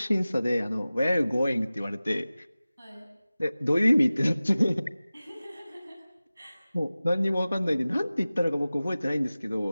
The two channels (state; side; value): inverted; both; correlation -0.97